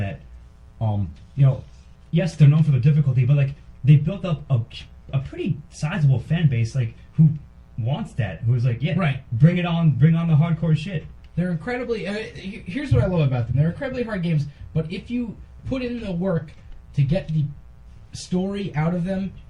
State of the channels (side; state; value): both; identical; correlation 1.00